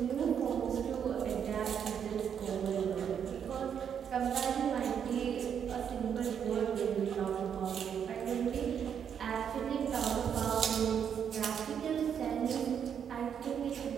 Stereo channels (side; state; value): left; quieter; 8.0 dB